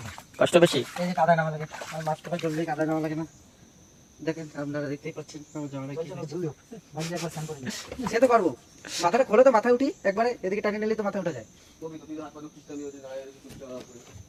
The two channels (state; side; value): identical; both; correlation 1.00